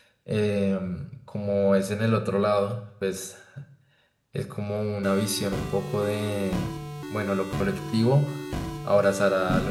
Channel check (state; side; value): identical; both; correlation 1.00